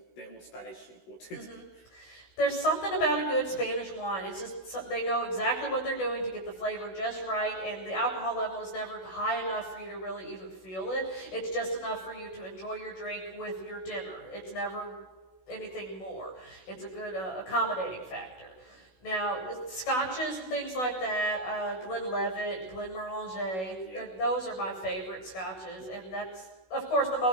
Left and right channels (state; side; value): late; right; 16 ms